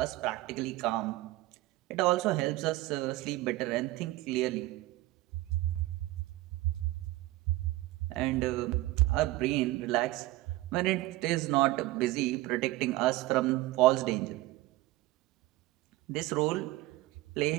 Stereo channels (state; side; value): quieter; left; 17.7 dB